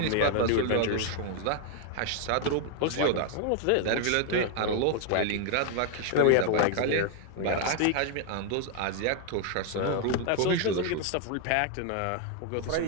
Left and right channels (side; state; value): both; different; correlation 0.00